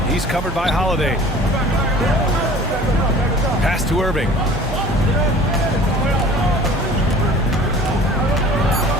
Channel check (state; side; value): normal; both; correlation 0.46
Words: He's covered by Holiday. Pass to Irving.